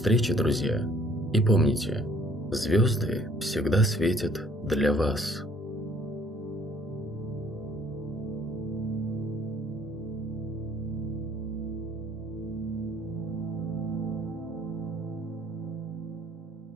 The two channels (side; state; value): both; normal; correlation 0.59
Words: друзья, и помните, звезды всегда светят для вас.